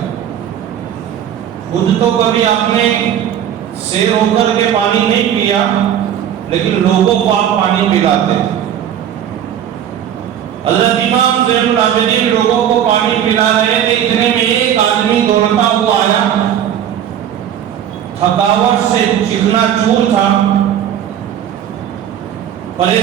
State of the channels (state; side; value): quieter; left; 9.9 dB